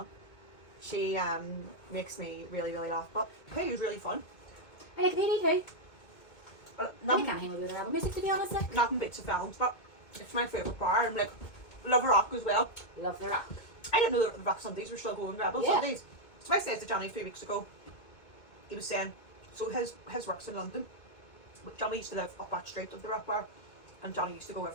She makes me really, really laugh. But hey, it was really fun. I like Penny too. I Nothing, can't hang with her album music, to be honest. Like. nothing beats the films, but it's my favourite bar. And like, love rock as well. Love the rock. I didn't know that the rock Sundays were still going, Rebel Sundays. So I said to Johnny 3 weeks ago, he was saying, so his work's in London. But Johnny used to live up that street of the rock bar, and Johnny used to go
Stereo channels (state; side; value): late; right; 2.2 ms